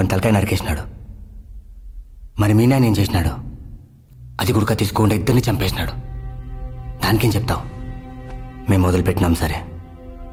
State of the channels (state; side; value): identical; both; correlation 1.00